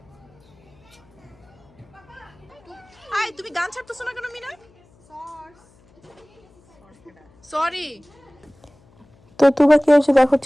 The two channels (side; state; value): left; noise; hum, 30 dB below the sound